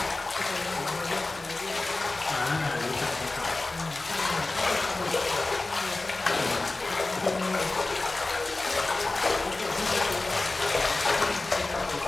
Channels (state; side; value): quieter; right; 3.1 dB